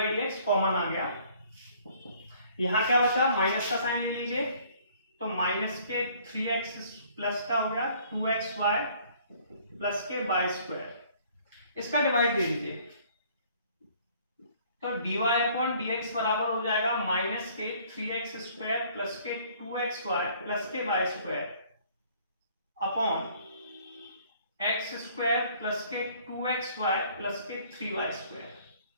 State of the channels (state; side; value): inverted; both; correlation -0.58